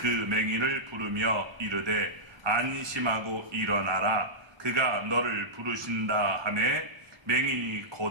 맹인을 부르며 이르되 안심하고 일어나라 그가 너를 부르신다 하매 맹인이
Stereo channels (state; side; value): late; left; 1.2 ms